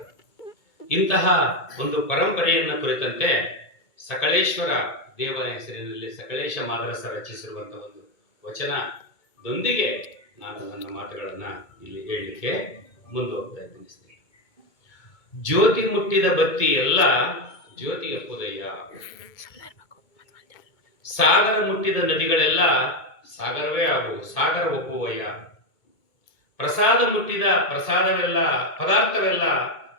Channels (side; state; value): right; late; 2.2 ms